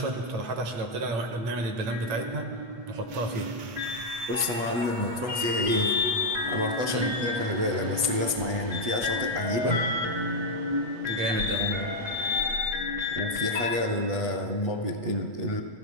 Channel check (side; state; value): left; late; 8.3 ms